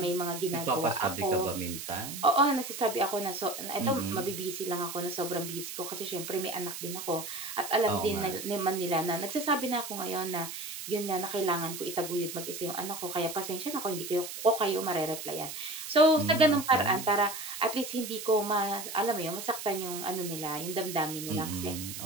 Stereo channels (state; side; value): noise; right; hiss, 8 dB below the sound